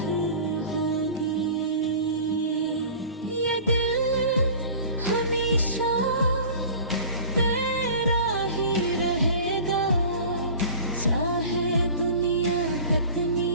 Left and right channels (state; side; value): inverted; both; correlation -0.41